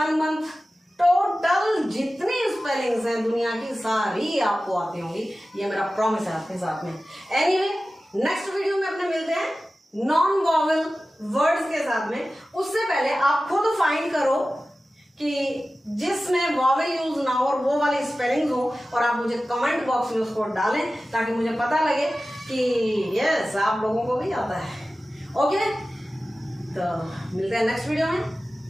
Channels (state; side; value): normal; both; correlation 0.95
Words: मंथ टोटल जितनी स्पेलिंग स्पेलिंग्स हैं दुनिया की सारी आपको आती होंगी, ये मेरा प्रॉमिस है आपके साथ में। एनीवे, नेक्स्ट वीडियो में अपने मिलते हैं नॉन वॉवेल वर्ड्स के साथ में। उससे पहले आप खुद फाइंड करो कि जिसमें वॉवेल यूज ना हो और वो वाली स्पेलिंग हो, और आप मुझे कमेंट बॉक्स में उसको डालें ताकि मुझे पता लगे कि यस आप लोगों को भी आता है। ओके, तो मिलते हैं नेक्स्ट वीडियो में।